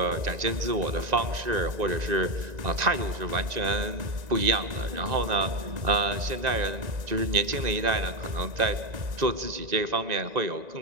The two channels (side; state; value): left; late; 1.9 ms